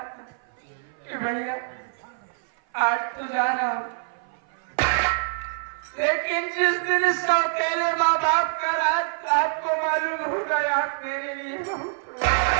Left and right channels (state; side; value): silent; left; 56 dB below the other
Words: कि भैया आज तो जा रहा हूँ, लेकिन जिस दिन इस अकेले माँ बाप का राज आपको मालूम हो गया मेरे लिए बहुत